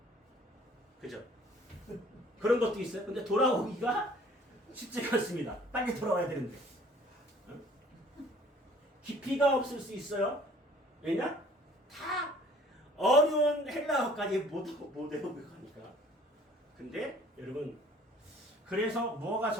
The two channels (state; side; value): normal; both; correlation 0.54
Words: 그죠? 그런 것도 있어요. 근데 돌아오기가 쉽지가 않습니다. 빨리 돌아와야 되는데. 깊이가 없을 수 있어요. 왜냐? 다 어려운 헬라어까지 못 외우고 가니까. 근데 여러분, 그래서 뭐가